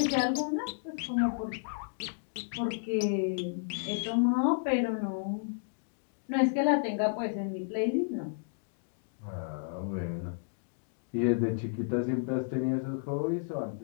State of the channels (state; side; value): silent; right; digital silence